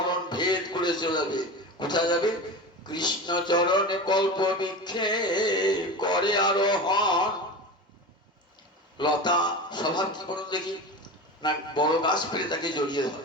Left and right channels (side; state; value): both; normal; correlation 0.28